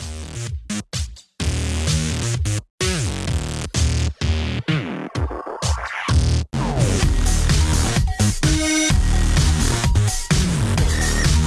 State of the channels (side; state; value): both; identical; correlation 1.00